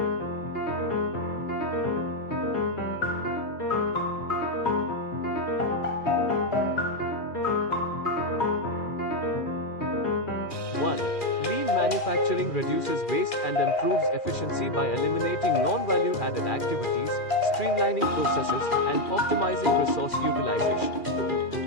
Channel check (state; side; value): late; right; 2.4 ms